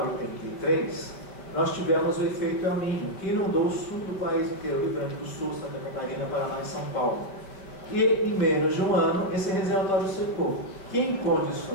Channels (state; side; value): late; right; 5.0 ms